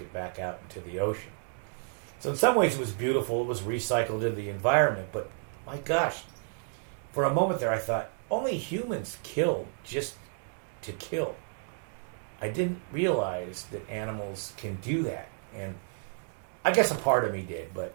back out into the ocean. So in some ways it was beautiful. It was recycled into the environment. But my gosh, for a moment there I thought, only humans kill just to kill. I didn't realize that animals can do that. And I guess a part of me did, but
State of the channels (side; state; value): left; silent; 57 dB below the other